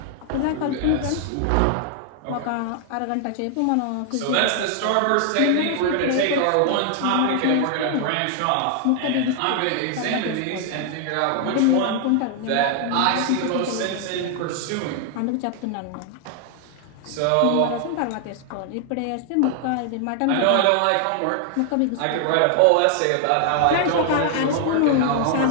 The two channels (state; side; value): different; both; correlation 0.00